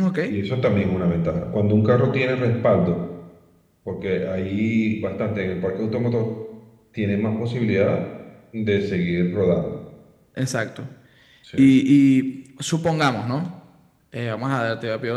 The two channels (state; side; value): identical; both; correlation 1.00